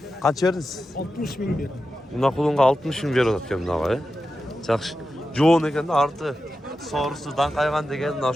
qancha verdingiz? 60 bin bir. Buna kulunga 60 bin berip atkan bunaqa. Yaxshi. Jo'on ekan da arti so'risidan qaygan degan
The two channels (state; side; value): normal; both; correlation 0.91